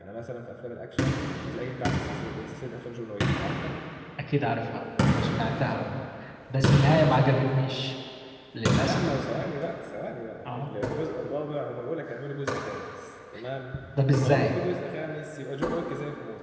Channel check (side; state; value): both; identical; correlation 1.00